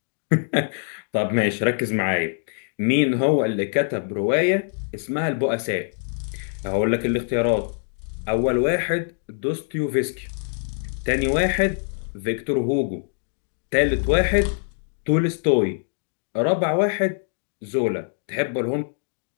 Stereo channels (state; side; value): silent; right; 62 dB below the other